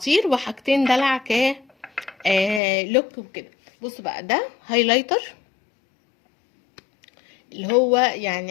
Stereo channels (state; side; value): drops out; right; at 2.6 s